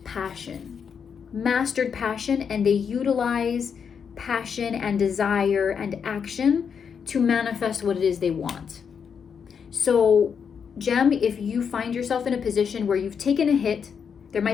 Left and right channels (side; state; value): right; quieter; 6.8 dB